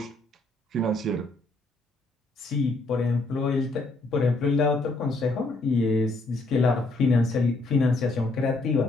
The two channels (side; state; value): right; quieter; 3.0 dB